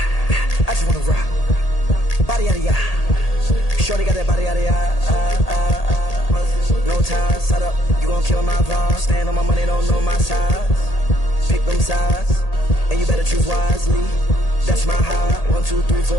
I just wanna rock. Body out of ya. Shorty got that body out of ya. No time, set up. You gon' kill my vibe. Stand on my money, don't know my size. Pick them sides, and you better choose wisely. That's my high. 1, 2, 3,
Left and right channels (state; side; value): late; right; 1.8 ms